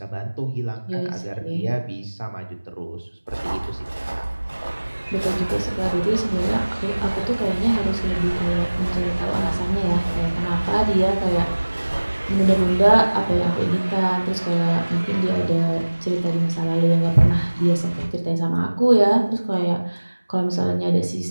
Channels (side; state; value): both; inverted; correlation -1.00